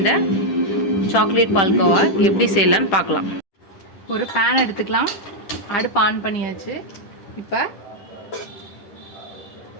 சாக்லேட் பால்கோவா எப்படி செய்யலான்னு பார்க்கலாம். ஒரு பேன் எடுத்துக்கலாம். அடுப்பு ஆன் பண்ணியாச்சு. இப்போ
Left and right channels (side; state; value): right; late; 10 ms